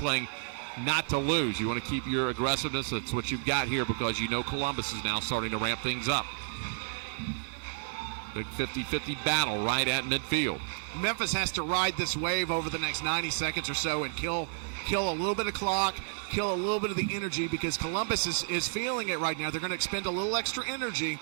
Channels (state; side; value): silent; left; 55 dB below the other